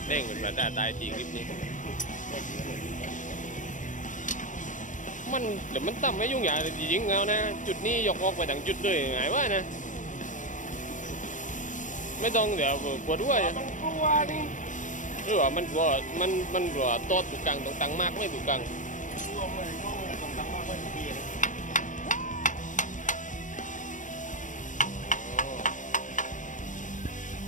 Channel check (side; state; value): right; late; 0.37 ms